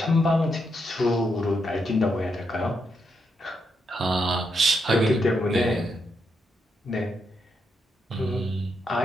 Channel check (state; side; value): normal; both; correlation 0.80